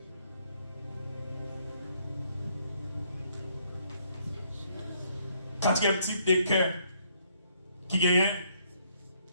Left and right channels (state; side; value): inverted; both; correlation -0.69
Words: Quatrième type de cœur qui gagne,